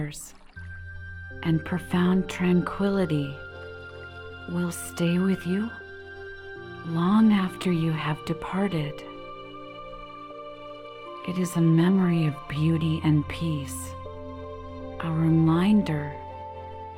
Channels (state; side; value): identical; both; correlation 1.00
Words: and profound tranquility, will stay with you long after you have departed. It is a memory of beauty and peace, a reminder